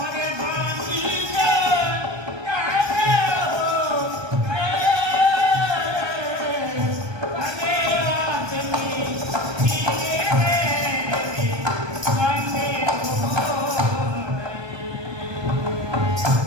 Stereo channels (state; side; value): late; left; 1.2 ms